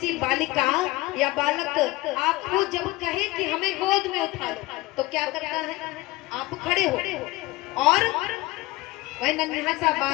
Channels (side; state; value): right; quieter; 20.2 dB